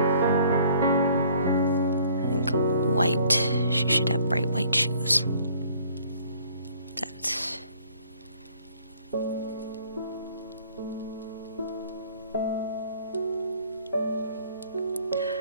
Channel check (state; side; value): inverted; both; correlation -0.58